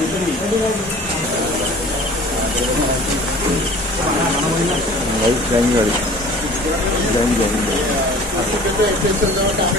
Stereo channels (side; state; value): both; normal; correlation 0.46